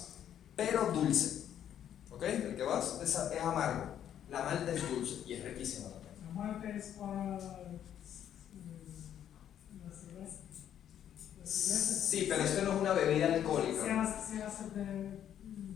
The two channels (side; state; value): right; quieter; 10.1 dB